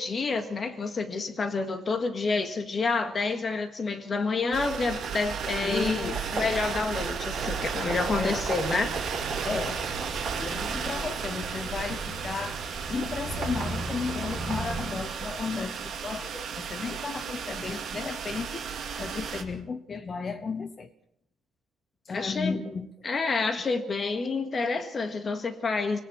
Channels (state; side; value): normal; both; correlation 0.79